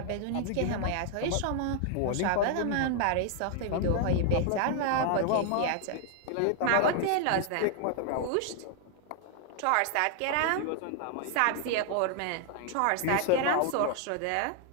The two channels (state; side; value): different; both; correlation 0.00